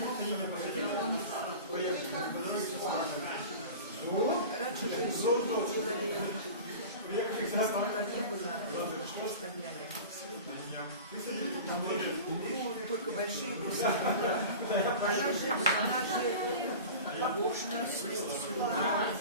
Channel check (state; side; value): inverted; both; correlation -0.35